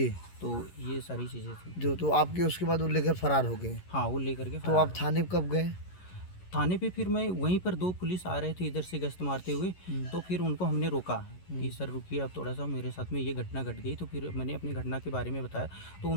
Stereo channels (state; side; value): late; right; 11 ms